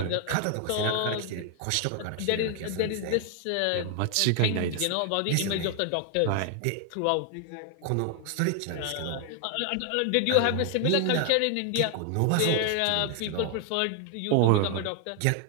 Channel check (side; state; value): both; different; correlation 0.00